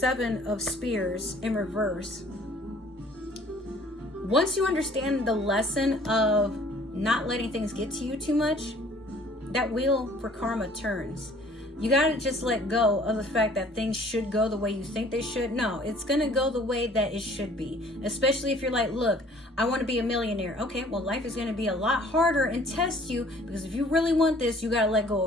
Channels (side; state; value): both; normal; correlation 0.55